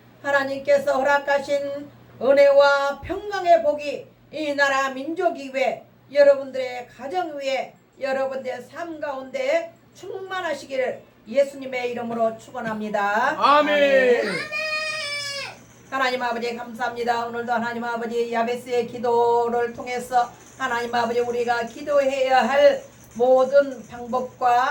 하나님께서 허락하신 은혜와 평강의 복이 이 나라 민족 위에 여러분들의 가정 위에 여러분들의 삶 가운데 충만하시기를 예수님의 이름으로 축원합니다. 아멘. 하나님 아버지 감사합니다. 오늘도 하나님 아버지 야베스의 기도를 통해서 하나님 아버지 우리가 기도해야 할 모든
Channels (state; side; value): identical; both; correlation 1.00